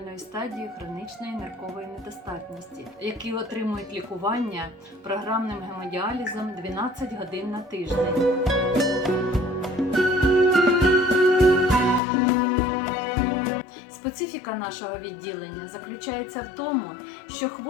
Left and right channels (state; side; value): drops out; right; at 12.0 s